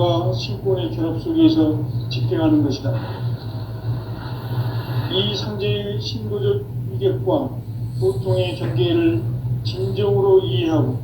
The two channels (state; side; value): identical; both; correlation 1.00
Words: 신권의 결합 속에서 집행하는 것이다. 이 상제의 신도적 위격과 보통의 경계를 진정으로 이해하고